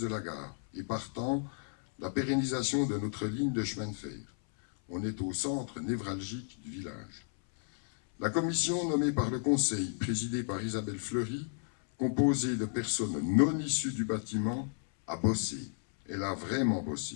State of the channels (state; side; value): silent; right; 56 dB below the other